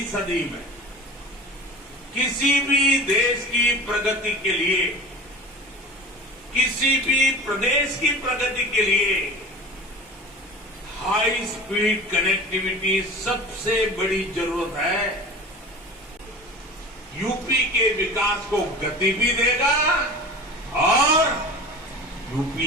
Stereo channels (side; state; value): both; normal; correlation 0.37